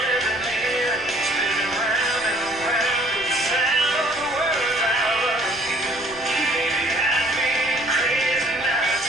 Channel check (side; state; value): right; noise; rumble, 21 dB below the sound